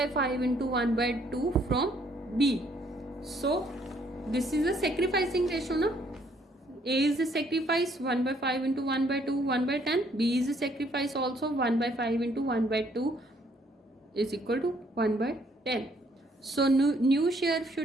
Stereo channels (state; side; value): normal; both; correlation 0.66